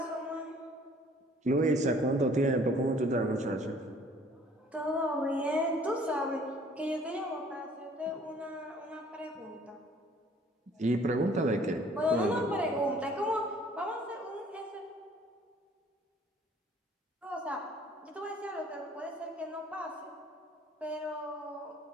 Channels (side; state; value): both; normal; correlation 0.56